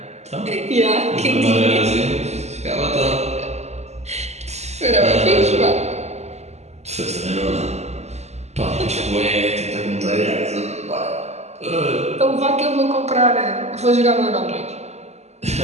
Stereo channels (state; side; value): late; left; 0.32 ms